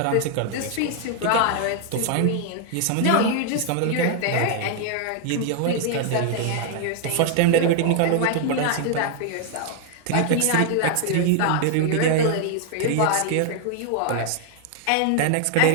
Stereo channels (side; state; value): both; different; correlation 0.00